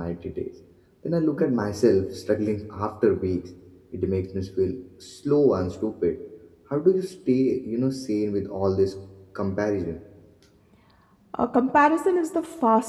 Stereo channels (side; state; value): both; identical; correlation 1.00